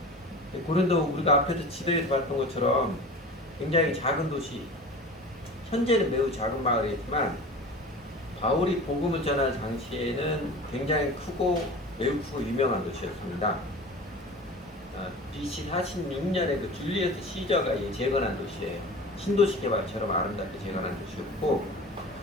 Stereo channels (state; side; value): normal; both; correlation 0.36